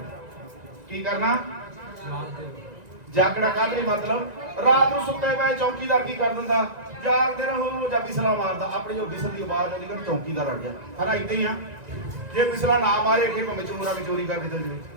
ਕੀ ਕਰਨਾ? ਜਾਗਣਾ। ਕਾਹਦੇ ਮਤਲਬ ਰਾਤ ਨੂੰ ਸੁੱਤੇ ਪਏ ਚੌਕੀਦਾਰ ਕੀ ਕਰ ਦਿੰਦਾ? ਜਾਗਦੇ ਰਹੋ। ਜਾਂ ਬਿਸਲਾ ਮਾਰਦਾ, ਆਪਣੀ ਉਹ ਬਿਸਲ ਦੀ ਆਵਾਜ਼ ਆਉਂਦੀ ਕਿ ਚੌਕੀਦਾਰ ਆ ਗਿਆ। ਹਨਾ ਇਦਾਂ ਹੀ ਆ, ਜੇ ਬਿਸਲਾ ਨਾ ਮਾਰੇ ਕਿ ਭਾਵੇਂ ਚੋਰਾਂ ਵੀ ਚੋਰੀ ਕਰਕੇ ਚੱਲ ਜਾਵੇ।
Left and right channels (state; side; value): late; left; 1.9 ms